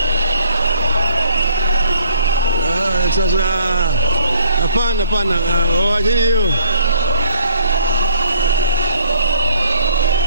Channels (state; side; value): inverted; both; correlation -0.58